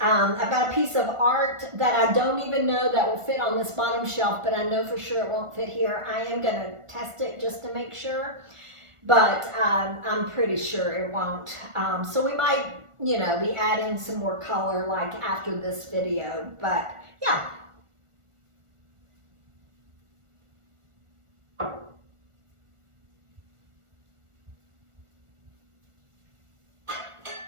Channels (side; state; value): left; late; 1.4 ms